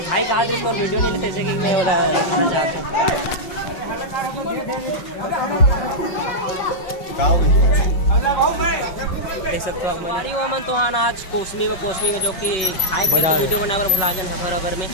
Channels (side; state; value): right; late; 5.3 ms